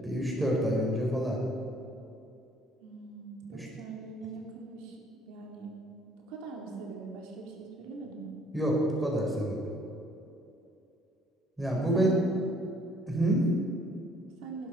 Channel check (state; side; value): normal; both; correlation 0.61